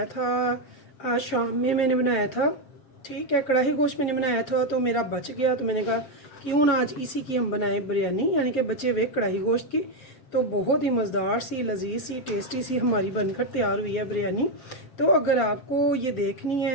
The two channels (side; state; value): right; late; 7.2 ms